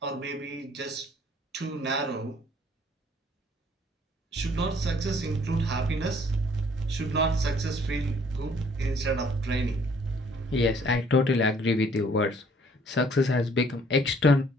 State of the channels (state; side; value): normal; both; correlation 0.60